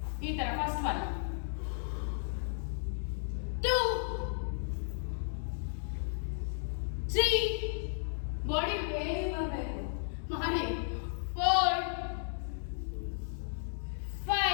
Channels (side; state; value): right; silent; digital silence